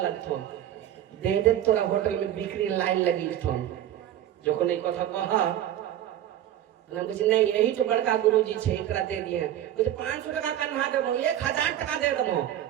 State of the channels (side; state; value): left; quieter; 11.7 dB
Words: लगथो, दे दे तोरा होटल में बिक्री लाइन लगी थो। যখন এই কথা কহা हम कुछ नहीं, यही तो बड़का गुरुजी छे, एकरा दे दिए कुछ 500 टका कन्हा देबो, 1000 टका दे देबो,